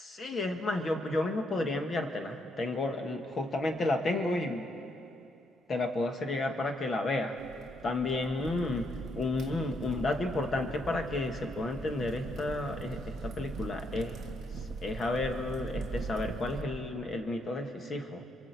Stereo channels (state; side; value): normal; both; correlation 0.75